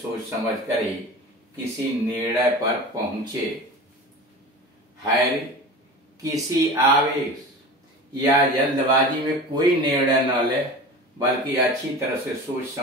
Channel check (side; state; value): both; normal; correlation 0.34